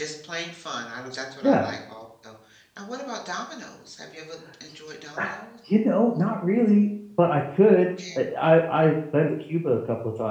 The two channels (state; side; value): identical; both; correlation 1.00